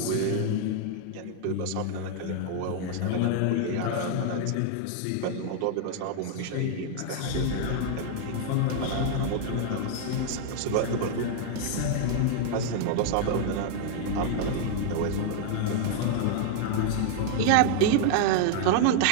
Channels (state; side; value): different; both; correlation 0.00